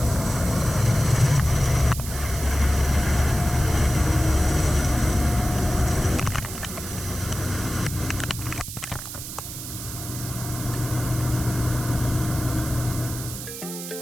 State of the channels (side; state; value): right; noise; hiss, 9 dB below the sound